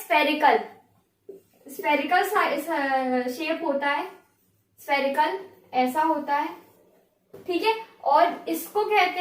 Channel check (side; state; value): both; identical; correlation 1.00